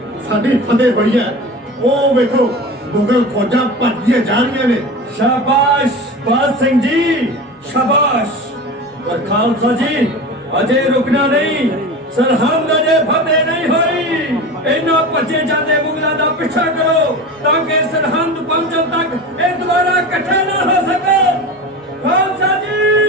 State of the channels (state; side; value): normal; both; correlation 0.30